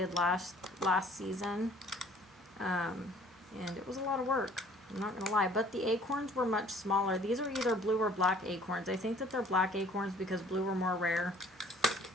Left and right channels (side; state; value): both; normal; correlation 0.55